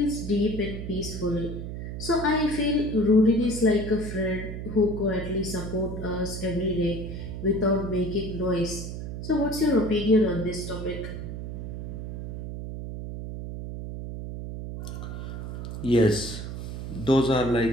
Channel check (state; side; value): noise; right; hum, 7 dB below the sound